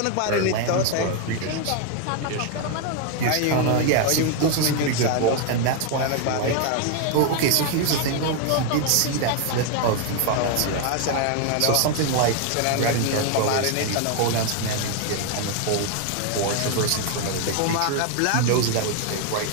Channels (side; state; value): both; different; correlation 0.01